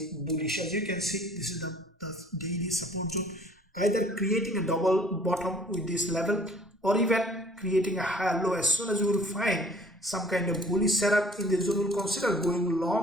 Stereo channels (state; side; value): normal; both; correlation 0.54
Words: bullish. As you can see, this is the daily support zone, either creating a double bottom with this level or even creating a higher low. As soon as you will find some kind of bullish setup in this zone, will consider going